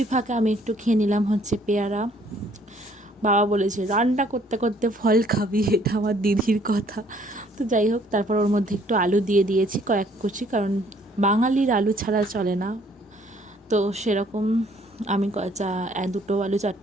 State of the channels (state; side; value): normal; both; correlation 0.62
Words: ফাঁকে আমি একটু খেয়ে নিলাম হচ্ছে পেয়ারা। বাবা বলেছে রান্না করতে করতে ফল খাবি, এটা আমার দিদির কথা। তো যাই হোক, তারপর ওর মধ্যে একটু আলু দিয়ে দিয়েছি কয়েক কুচি, কারণ বাঙালির আলু ছাড়া চলে না। তো সেরকম আমি দুটো আলু 4